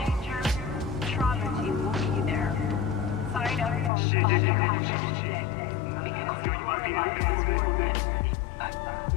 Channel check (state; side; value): drops out; right; at 3.9 s